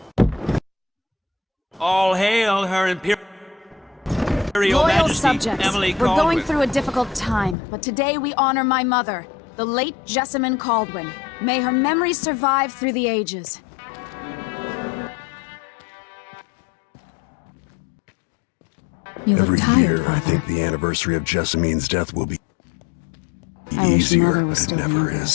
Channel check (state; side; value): drops out; right; at 7.6 s